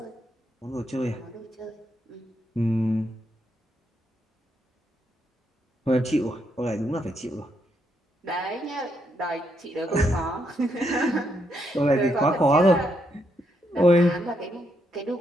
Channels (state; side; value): normal; both; correlation 0.78